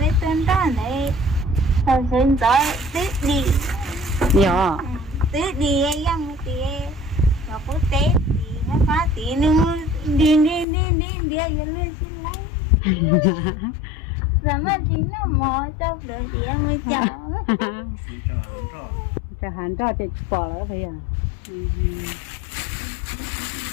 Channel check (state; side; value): drops out; right; at 10.7 s